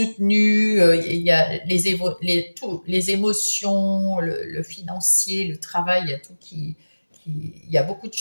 Il y a les émotions, le financier, le travail, il y a tout il y a beaucoup de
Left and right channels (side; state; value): both; inverted; correlation -1.00